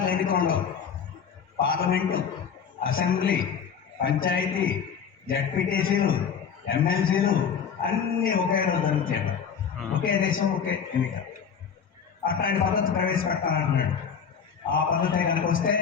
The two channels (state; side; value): quieter; right; 7.0 dB